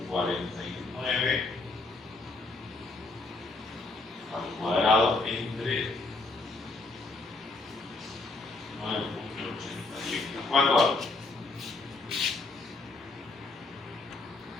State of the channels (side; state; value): right; quieter; 3.4 dB